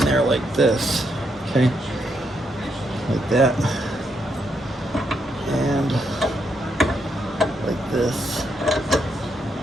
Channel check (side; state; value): both; normal; correlation 0.79